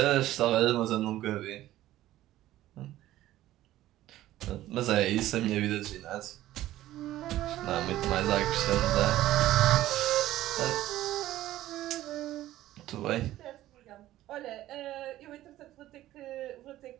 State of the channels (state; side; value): quieter; left; 14.6 dB